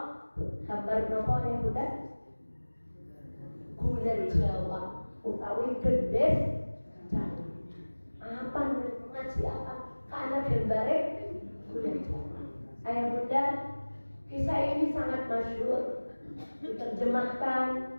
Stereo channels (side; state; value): both; inverted; correlation -1.00